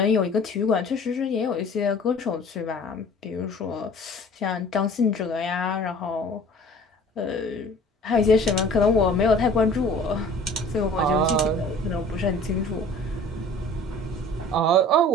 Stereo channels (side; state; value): both; normal; correlation 0.47